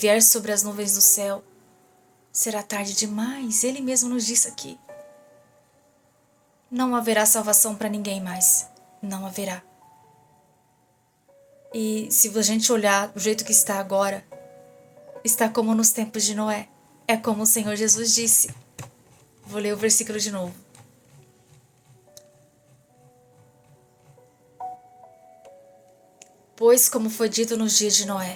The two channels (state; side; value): identical; both; correlation 1.00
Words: sobre as nuvens do céu, será tarde demais. Ele mesmo nos disse aqui. Não haverá salvação para ninguém mais. Não haverá. E se a gente olhar do jeito que está agora, está como nos tempos de Noé. É como o Senhor Jesus disse. Vou ler o versículo de novo. Pois como foi dito nos dias de